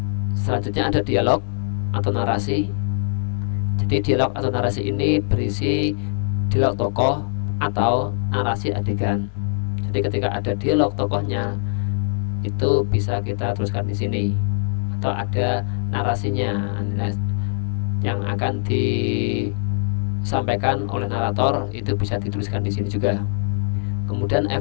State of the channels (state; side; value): silent; right; digital silence